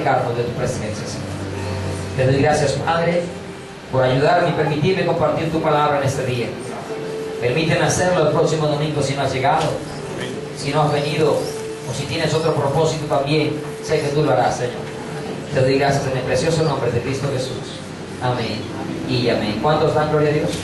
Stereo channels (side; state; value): both; identical; correlation 1.00